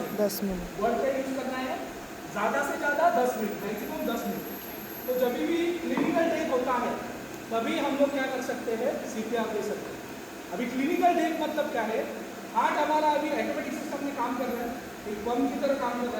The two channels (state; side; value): identical; both; correlation 1.00